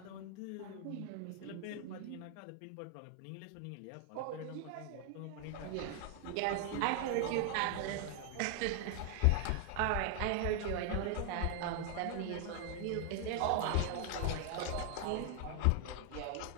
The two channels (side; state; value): both; different; correlation 0.00